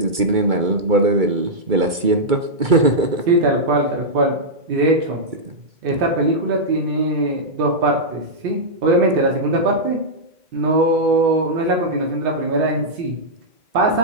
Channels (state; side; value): late; left; 2.3 ms